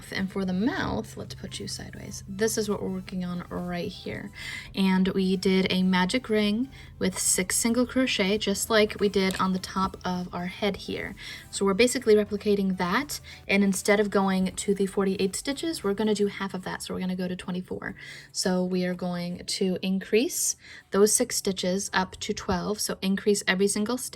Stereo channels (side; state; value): both; identical; correlation 1.00